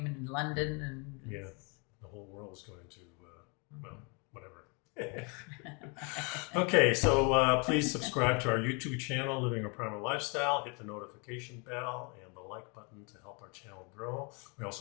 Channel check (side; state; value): right; quieter; 32.8 dB